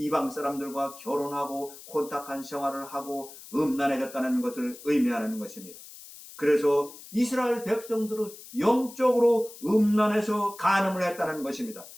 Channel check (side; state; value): left; noise; hiss, 17 dB below the sound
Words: 사람들과 결혼하고 혼탁한 생활을 하고 음란해졌다는 것을 의미하는 것입니다. 그래서 이스라엘 백성들은 영적으로 음란해서 간음을 했다는 것입니다.